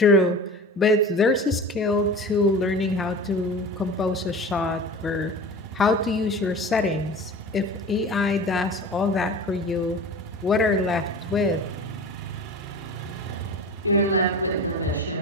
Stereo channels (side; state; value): both; normal; correlation 0.34